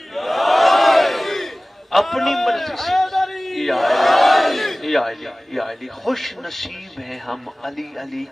اپنی مرضی سے یا علی یا علی یا علی. خوش نصیب ہیں ہم علی علی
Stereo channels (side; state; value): both; normal; correlation 0.98